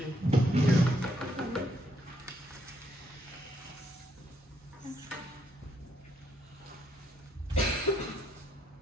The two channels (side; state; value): both; normal; correlation 0.74